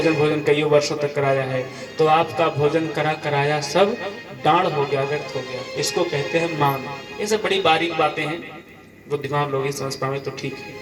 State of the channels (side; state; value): both; identical; correlation 1.00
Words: कई वर्षों तक कराया है, तो आपका भोजन कराया सब डांड हो गया, व्यर्थ हो गया। इसको कहते हैं मान। ये सब बड़ी बारीक बातें हैं, बुद्धिमान लोग ही समझ पाए तो ठीक है,